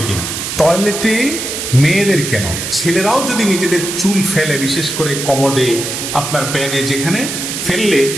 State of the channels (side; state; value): right; noise; hiss, 5 dB below the sound